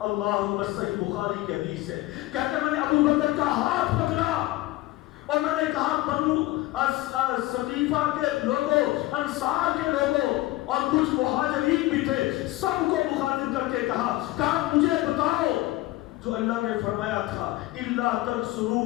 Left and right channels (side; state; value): right; quieter; 18.1 dB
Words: اللہم صحیح بخاری کی حدیث ہے، کہتے میں نے ابو بکر کا ہاتھ پکڑا اور میں نے کہا بنو سقیفہ کے لوگوں، انصار کے لوگوں اور کچھ مہاجرین بھی تھے، سب کو مخاطب کر کے کہا مجھے بتاؤ جو اللہ نے فرمایا تھا الا